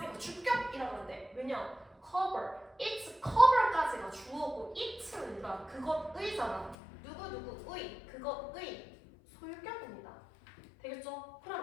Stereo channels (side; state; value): right; drops out; at 6.8 s